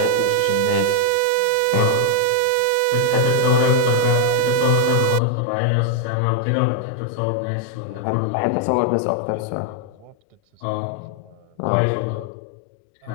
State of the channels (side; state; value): both; different; correlation 0.00